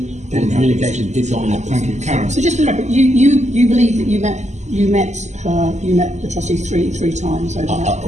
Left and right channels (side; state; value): left; late; 0.33 ms